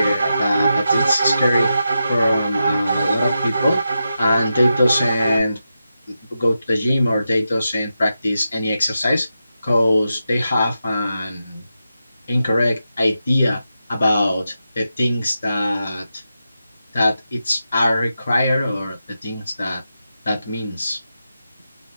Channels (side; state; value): both; inverted; correlation -0.88